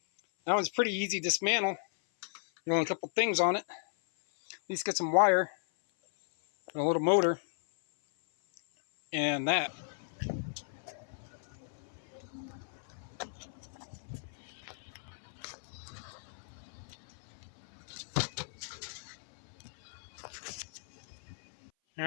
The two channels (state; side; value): silent; right; 54 dB below the other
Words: That one's pretty easy to dismantle. There's only a couple things on it. At least get some wire and a little motor and that. All